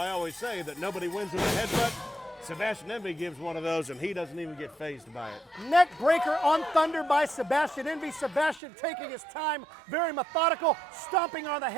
always say that nobody wins with a headbutt. Sebastian Envy gives one of those, and he doesn't even get fazed by it. Neck breaker on Thunder by Sebastian Envy. Sebastian taking his time, very methodical, stomping on the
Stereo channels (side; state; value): left; drops out; at 8.6 s